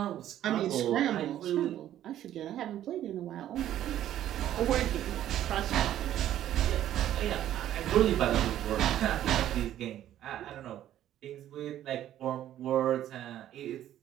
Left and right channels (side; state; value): left; quieter; 12.0 dB